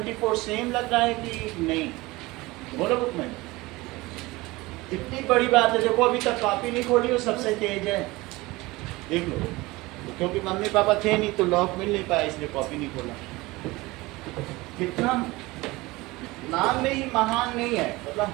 सेम लग रहा है कि नहीं? बोलो बुक में। इतनी बड़ी बात है, देखो अभी तक कॉपी नहीं खोली हो, सबसे तेज है, देख लो। क्योंकि मम्मी पापा थे नहीं तो लॉक मिल नहीं पाया, इसलिए कॉपी नहीं खोला। कितना नाम में ही महान नहीं है, मतलब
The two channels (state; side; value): quieter; left; 21.3 dB